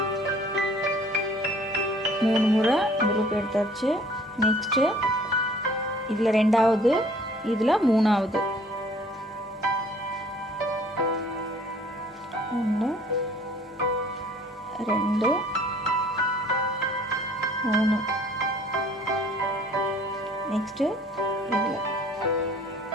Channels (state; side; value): normal; both; correlation 0.55